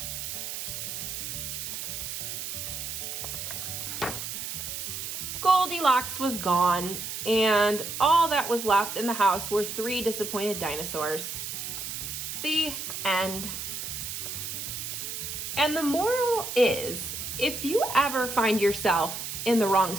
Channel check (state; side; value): noise; right; hiss, 5 dB below the sound